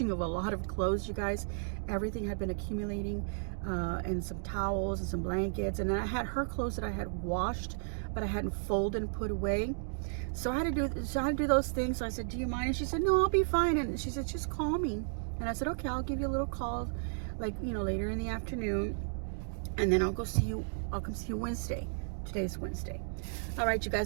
of a lot of clothes, you guys. Everything had been accumulating, and some towels and some blankets, and then I had her clothes that I had washed, but I hadn't folded and put away. So I had to do those things. So I said, do you mind? And she said, no, I'll be fine. And she said, just call me. And I said, okay, I'll give you a little call, like, later in the afternoon, and then I'll come see you Wednesday. Today's Wednesday. All right, you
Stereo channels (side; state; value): left; silent; digital silence